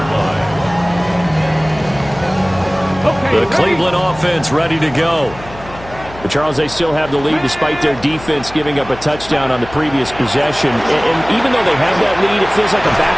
line. The Cleveland offense ready to go. But Charles, they still have the lead despite their defense giving up a touchdown on the previous possession. And even though they have that lead, it feels like a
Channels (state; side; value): noise; left; hum, 17 dB below the sound